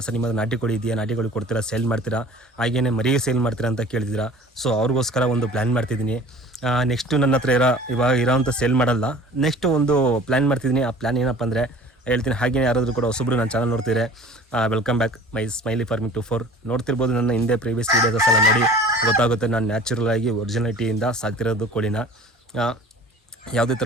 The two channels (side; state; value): both; normal; correlation 0.45